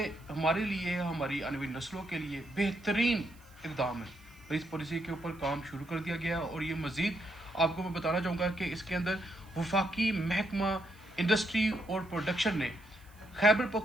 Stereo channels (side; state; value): right; noise; hiss, 28 dB below the sound